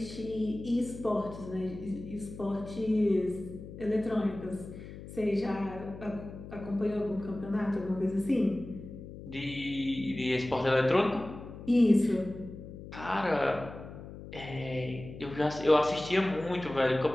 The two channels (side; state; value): left; noise; hum, 13 dB below the sound